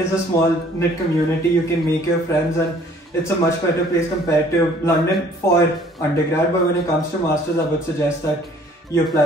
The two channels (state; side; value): normal; both; correlation 0.56